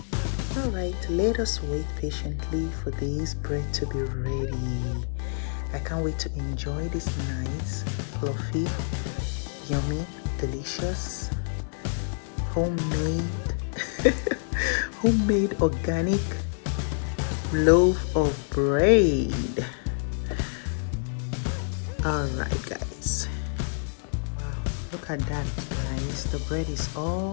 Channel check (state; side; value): silent; right; digital silence